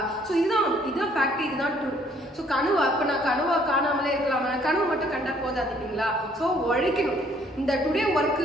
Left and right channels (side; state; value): both; normal; correlation 0.63